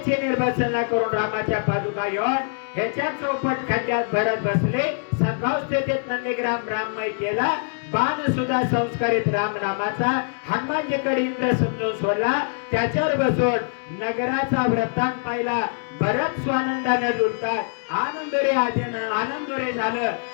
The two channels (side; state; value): right; silent; 62 dB below the other